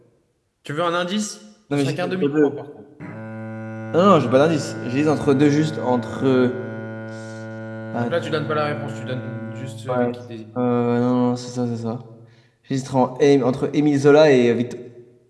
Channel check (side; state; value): both; identical; correlation 1.00